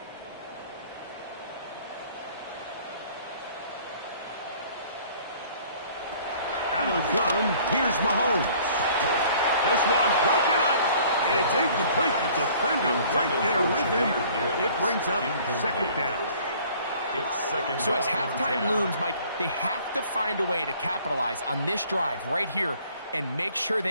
of the gun. Here's Mahomes. This one broken up. It's incomplete. The defender right there with him. It brings up second down. It's second So down as halftime and 10. looms, Mike, they have to find a way to capitalize on this drive right here and make sure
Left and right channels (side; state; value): both; inverted; correlation -0.54